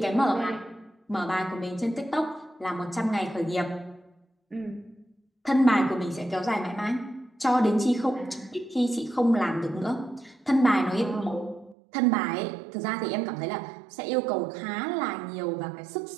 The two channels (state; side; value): drops out; left; at 11.8 s